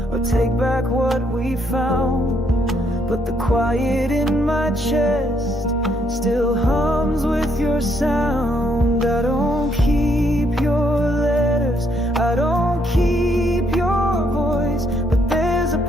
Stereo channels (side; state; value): both; normal; correlation 0.72